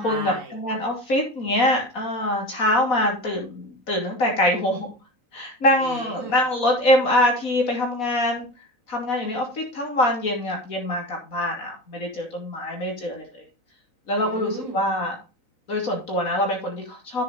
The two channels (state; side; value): late; right; 4.1 ms